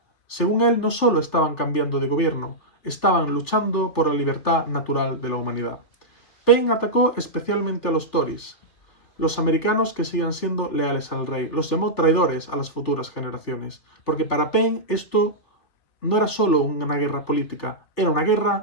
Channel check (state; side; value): late; right; 3.4 ms